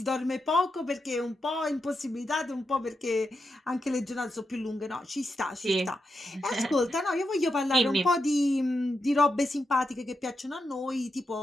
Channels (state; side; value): normal; both; correlation 0.86